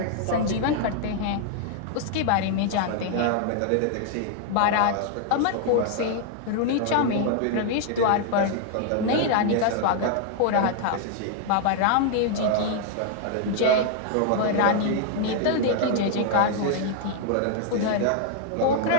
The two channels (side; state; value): both; different; correlation 0.00